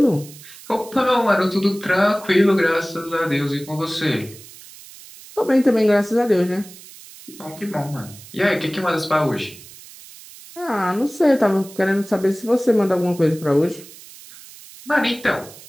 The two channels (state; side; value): noise; right; hiss, 19 dB below the sound